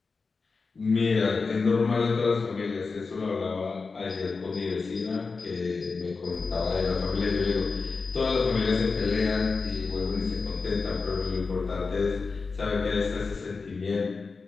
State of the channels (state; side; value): quieter; right; 4.4 dB